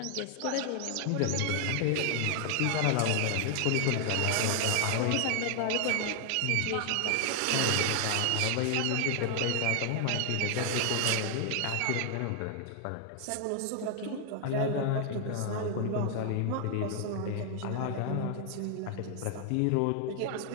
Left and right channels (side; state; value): both; different; correlation 0.00